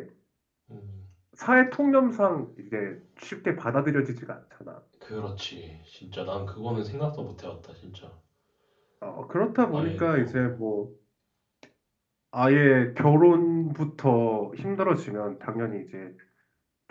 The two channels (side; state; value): both; identical; correlation 1.00